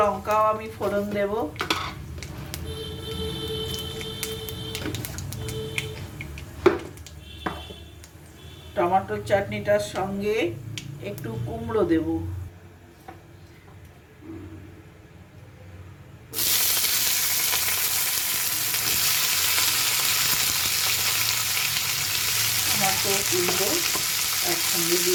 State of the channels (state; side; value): identical; both; correlation 1.00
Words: আমি ফোড়ন দেব। টমেটোর চাটনিটার সঙ্গে একটু কুমড়ো দেব। টমেটো কুমড়ো একসঙ্গে